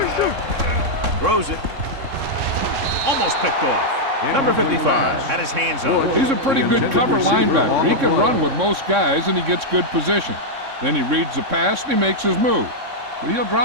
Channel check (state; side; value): late; left; 3.6 ms